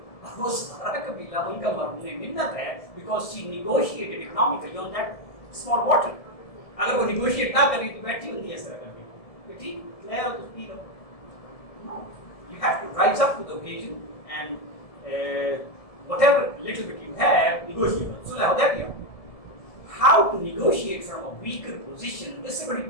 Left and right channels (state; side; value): late; right; 1.7 ms